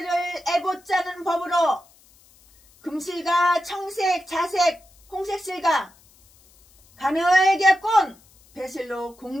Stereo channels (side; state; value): left; noise; hiss, 29 dB below the sound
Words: 에봇 짜는 법으로 금실과 청색, 자색, 홍색 실과 가늘게 꼰 배실로